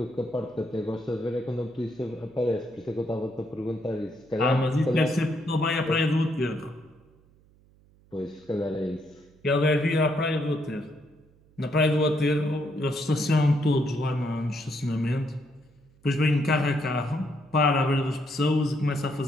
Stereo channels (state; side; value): noise; right; hum, 30 dB below the sound